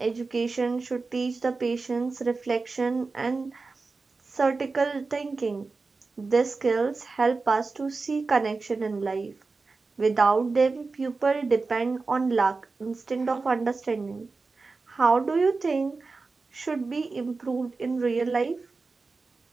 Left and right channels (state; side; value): quieter; left; 4.0 dB